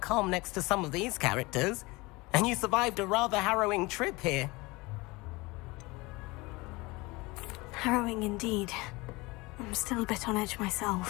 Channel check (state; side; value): quieter; right; 23.4 dB